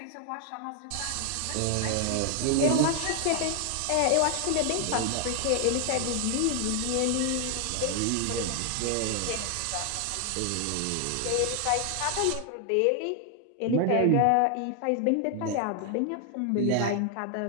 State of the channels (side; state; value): both; different; correlation 0.00